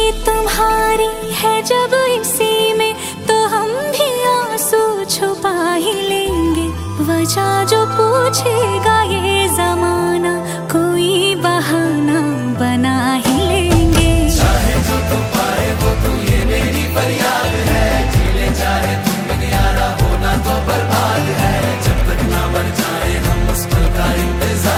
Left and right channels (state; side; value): identical; both; correlation 1.00